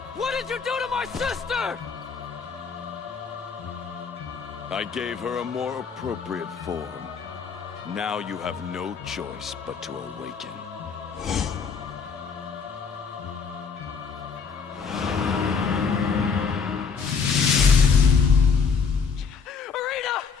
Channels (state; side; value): quieter; right; 5.6 dB